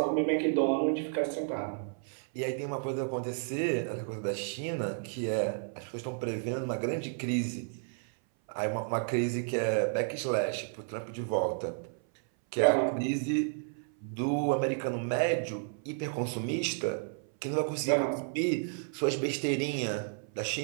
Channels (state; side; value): silent; left; 56 dB below the other